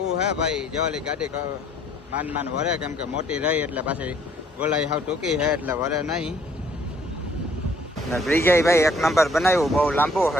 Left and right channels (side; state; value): both; normal; correlation 0.61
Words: હે ભાઈ, જેવાલી ગાડી માન વરે, કેમ કે મોટી રહી એટલે પાછી ગોલાઈ હાવ ટૂંકી છે એટલે વરે નહીં. ને બ્રિજે ભાઈ એક નંબર બનાવ્યું, બહુ લાંબુ